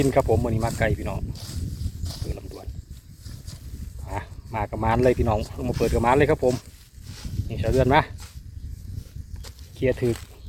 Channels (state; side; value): identical; both; correlation 1.00